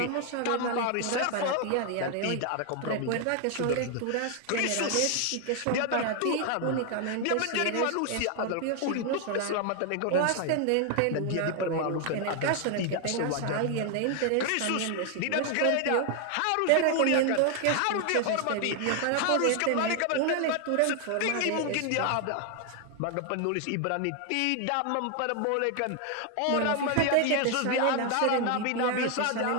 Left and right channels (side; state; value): both; different; correlation 0.00